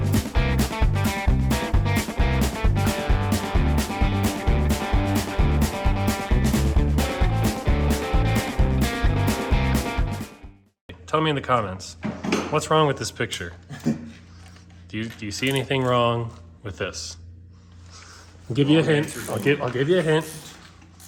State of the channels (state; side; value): identical; both; correlation 1.00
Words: Tell me in the comments. What's wrong with this picture? Do you see anything wrong with this? I'll give you a hint. I'll give you a hint.